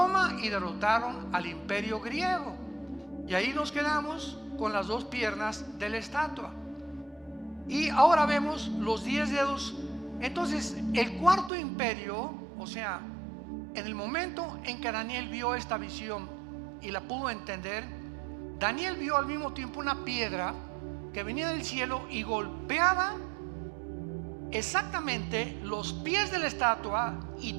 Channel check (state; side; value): drops out; left; at 11.5 s